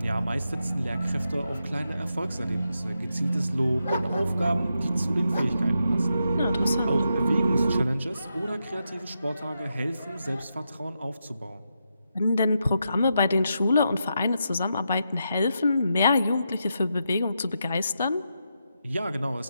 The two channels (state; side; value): inverted; both; correlation -0.85